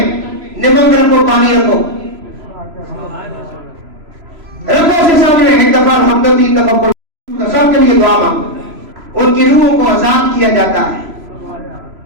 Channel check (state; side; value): late; left; 3.0 ms